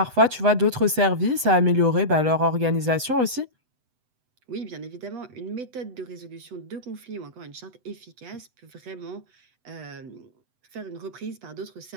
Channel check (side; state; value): left; late; 7.9 ms